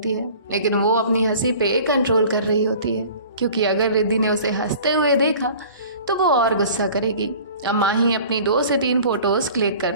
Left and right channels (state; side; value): inverted; both; correlation -0.45